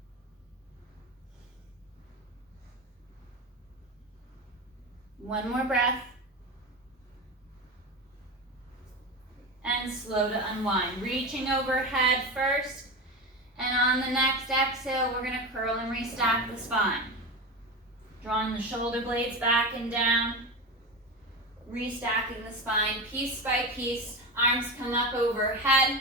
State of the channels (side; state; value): both; normal; correlation 0.22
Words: One more breath. And slow to unwind. Reaching overhead first. And on the next exhale, we're going to curl and restack the spine. Drawing the shoulder blades back and down, restacking the spine piece by piece. Arms come up